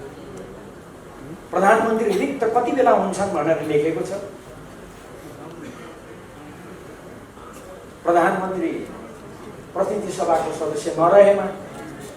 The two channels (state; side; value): identical; both; correlation 1.00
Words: प्रधानमन्त्री रिक्त कति बेला हुन्छन् भनेर लेखेको छ। प्रधानमन्त्री प्रतिनिधि सभाको सदस्य नरहेमा,